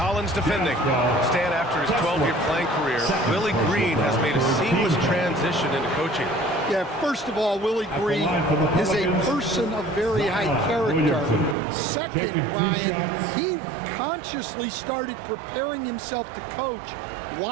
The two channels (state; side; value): drops out; left; at 11.6 s